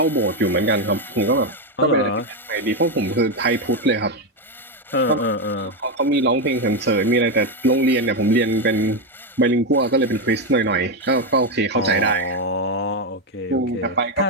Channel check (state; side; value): normal; both; correlation 0.07